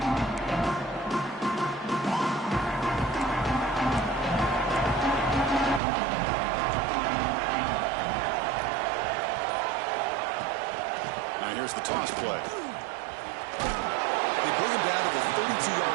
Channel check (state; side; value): drops out; left; at 5.8 s